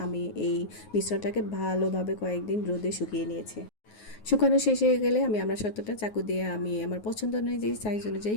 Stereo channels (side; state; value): right; late; 9.4 ms